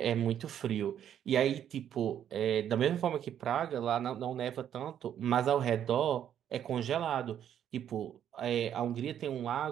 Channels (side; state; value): left; quieter; 9.9 dB